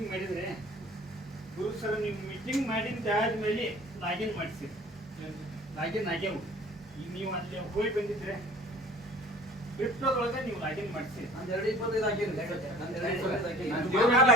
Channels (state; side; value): normal; both; correlation 0.47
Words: ಮಾಡಿದ್ರೆ ಗುರು ಸರ್ ನೀವು ಮೀಟಿಂಗ್ ಮಾಡಿದ ಆದ್ಮೇಲೆ ಲಾಗಿನ್ ಮಾಡಿಸಿ, ಲಾಗಿನ್ ಆಗ್ಯಾವು. ಈಗ ನೀವು ಅಲ್ಲಿ ಹೋಗಿ ಬಂದಿದ್ರೆ ಕ್ರಿಪ್ಟೋದೊಳಗೆ ನೀವು ಲಾಗಿನ್ ಮಾಡಿಸಿ. ನಾನು 225 ಹಾಕಿನಿ.